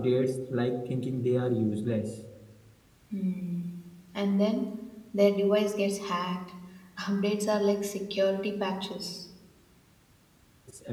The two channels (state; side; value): identical; both; correlation 1.00